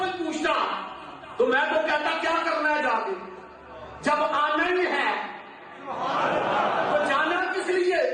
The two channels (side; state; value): both; identical; correlation 1.00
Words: پوچھتا تو میں تو کہتا کیا کرنا ہے جا کے، جب آنا ہی ہے تو جانا کس لیے؟